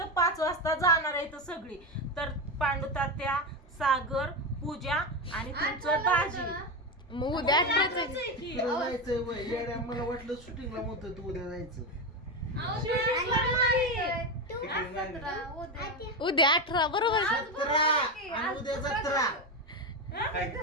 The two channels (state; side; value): normal; both; correlation 0.14